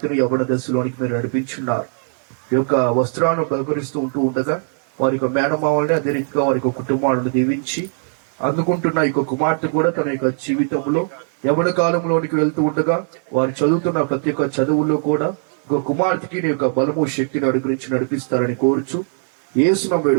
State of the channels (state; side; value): silent; left; 59 dB below the other